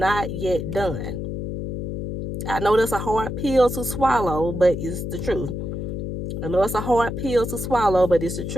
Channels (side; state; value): left; noise; hum, 4 dB below the sound